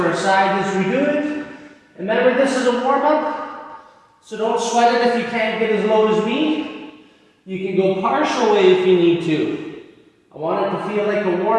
our side as we do it. And remember, this is a warm-up, so don't sweat it if you can't get as low as me. You can go partial way if you need to. I want it to feel like a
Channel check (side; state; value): both; identical; correlation 1.00